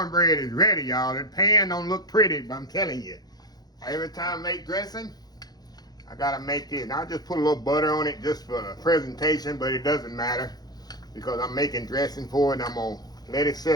is ready, y'all. The pan don't look pretty, but I'm telling you, every time I make dressing, I gotta make this. I'll just put a little butter on it just for the presentation, but it doesn't matter because I'm making dressing for it. I'm gonna let it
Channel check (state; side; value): late; right; 0.19 ms